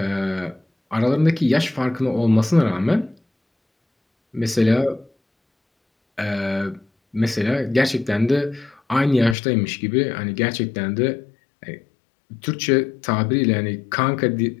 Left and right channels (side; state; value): right; drops out; at 9.3 s